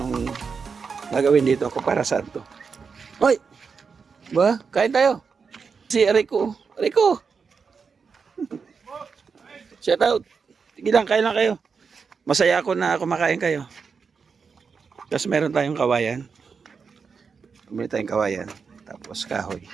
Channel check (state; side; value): quieter; left; 5.5 dB